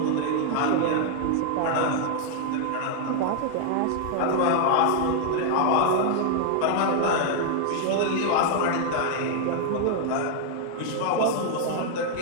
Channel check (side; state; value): both; different; correlation -0.01